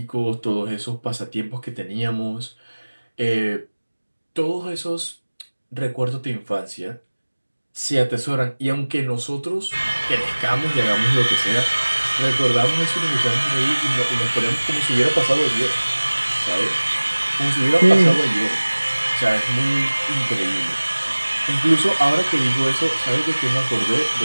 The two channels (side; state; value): both; inverted; correlation -1.00